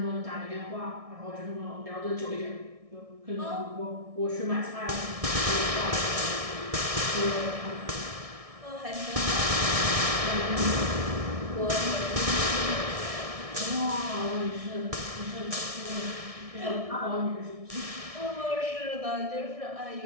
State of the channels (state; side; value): late; left; 1.6 ms